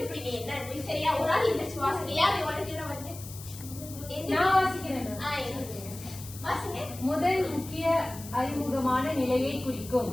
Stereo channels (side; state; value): left; noise; hiss, 14 dB below the sound